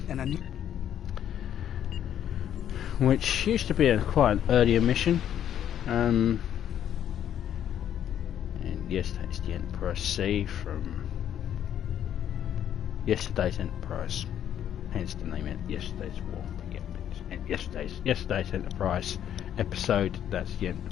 which used to be quite an earlier mission. And yes, that's the Enterprise C from yesterday's Enterprise. Hence the name of yesterday's war. Yesterday's Enterprise episode. That's the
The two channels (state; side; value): quieter; right; 10.2 dB